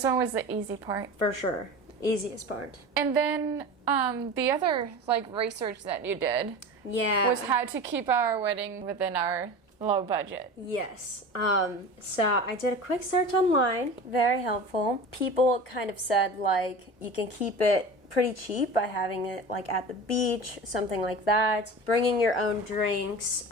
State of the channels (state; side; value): normal; both; correlation 0.33